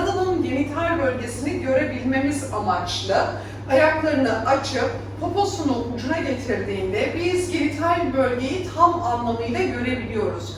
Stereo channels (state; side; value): identical; both; correlation 1.00